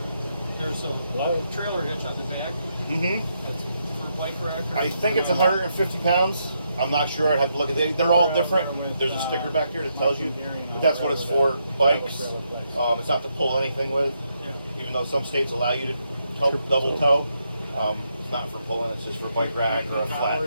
There's a low trailer hitch on the back. Mm-hmm. That's for bike rack. Or I think it's 150 pounds. I'm not sure. I'd have to look at it. They're all different. There's a sticker back here that tells you, but that's what it's for. Bikes. It's not to pull anything with, Yeah. even though some states allow you to double tow. It's not for pulling. It's just for bike rack or a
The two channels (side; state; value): both; inverted; correlation -0.79